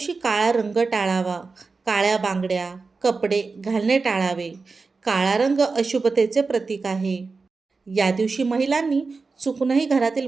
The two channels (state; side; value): quieter; left; 4.3 dB